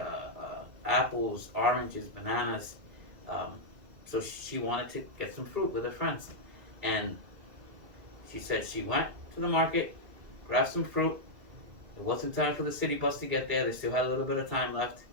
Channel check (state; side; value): late; left; 2.4 ms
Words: apples, oranges, bananas. So she wanted to get some fruit with her friends, and she said she went to the market, grabbed some fruit. It wasn't time for the city bus to get there. They still had a little bit of time left,